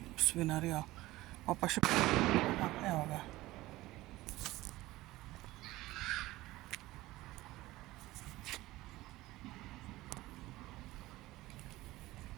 svinarijo. Pa še evo ga.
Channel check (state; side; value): quieter; left; 18.1 dB